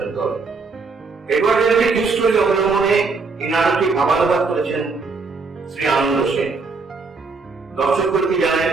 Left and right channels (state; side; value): quieter; left; 4.3 dB